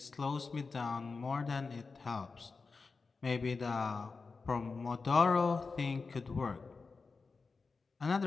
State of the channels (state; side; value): quieter; right; 4.4 dB